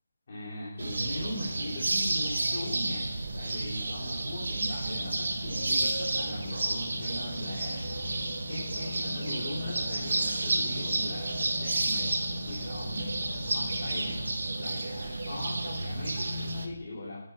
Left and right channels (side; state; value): both; inverted; correlation -0.92